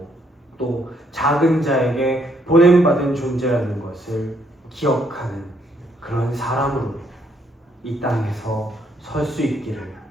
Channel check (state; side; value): normal; both; correlation 0.71